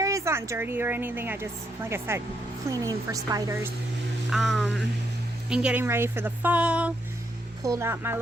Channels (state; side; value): normal; both; correlation 0.77